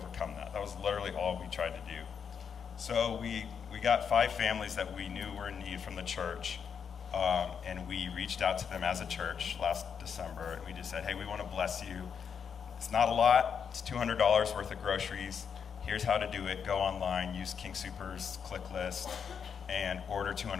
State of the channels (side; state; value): right; quieter; 7.0 dB